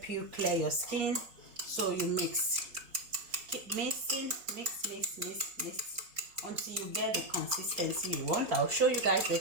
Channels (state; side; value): late; left; 4.2 ms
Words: you clear your skin. So you mix, keep mixing, mix until you get the consistency you want. I'll show you guys the